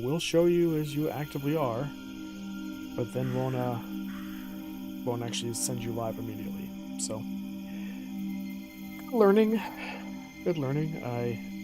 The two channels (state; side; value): identical; both; correlation 1.00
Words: show you as you actively are, but then won't actually send you live immediately. So learning, good learning. I